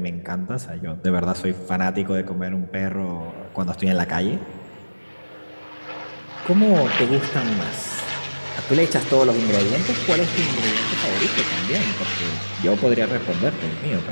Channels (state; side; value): inverted; both; correlation -1.00